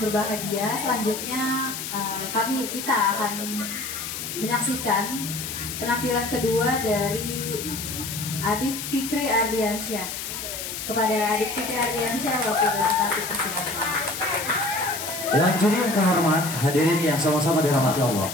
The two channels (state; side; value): noise; left; hiss, 6 dB below the sound